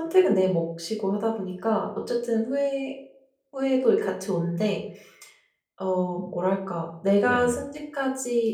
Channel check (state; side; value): identical; both; correlation 1.00